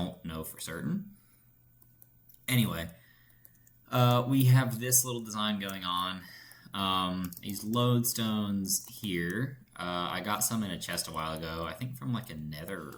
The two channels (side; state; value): both; identical; correlation 1.00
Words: know for certain. Anyway, we have this little design going on. These lodestones here. I got some in a chest a while ago. I think from like a